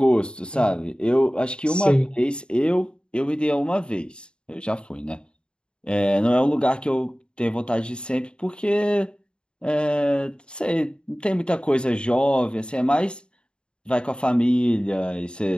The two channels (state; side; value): late; right; 0.052 ms